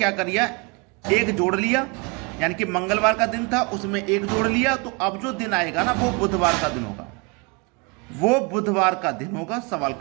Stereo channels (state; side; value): quieter; left; 30.0 dB